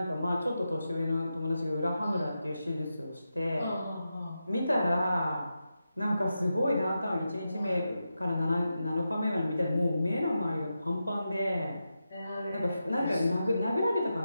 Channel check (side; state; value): both; inverted; correlation -0.89